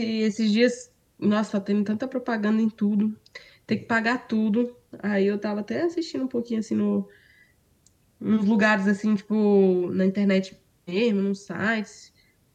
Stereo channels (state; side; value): identical; both; correlation 1.00